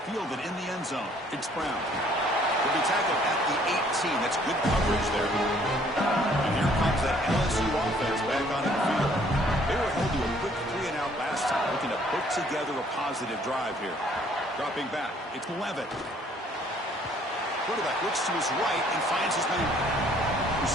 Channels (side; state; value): both; normal; correlation 0.61